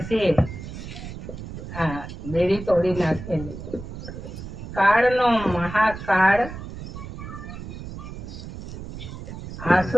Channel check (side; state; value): right; noise; rumble, 10 dB below the sound